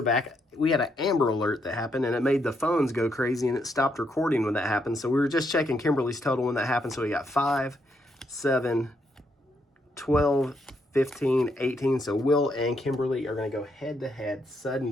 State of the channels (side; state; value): both; normal; correlation 0.77